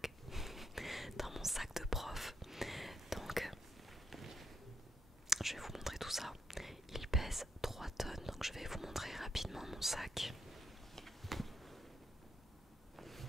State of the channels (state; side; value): normal; both; correlation 0.80